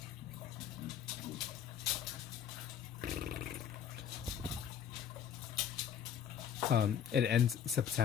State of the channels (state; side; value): quieter; right; 8.7 dB